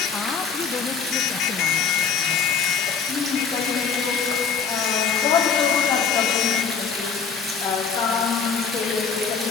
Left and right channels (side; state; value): right; quieter; 6.2 dB